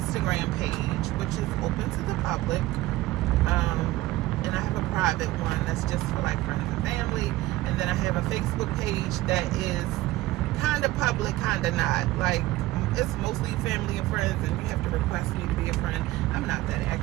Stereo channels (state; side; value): quieter; left; 17.5 dB